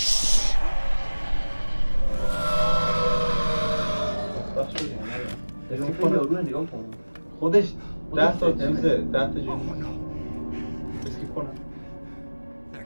خوشبخت شدیم. اسکی کنه رو نگاه کن. خودش 10 تا چیزه 10 تا جون اسکیپ کنم.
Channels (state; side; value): inverted; both; correlation -1.00